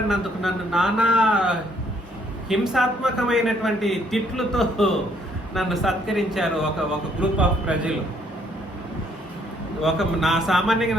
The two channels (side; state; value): both; normal; correlation 0.67